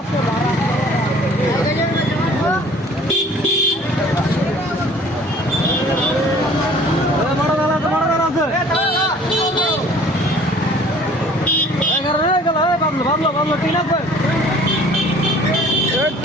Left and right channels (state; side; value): normal; both; correlation 0.51